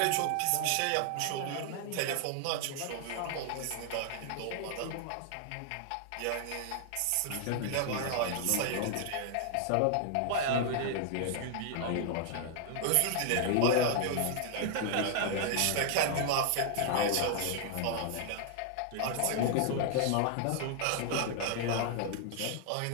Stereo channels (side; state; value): both; different; correlation -0.01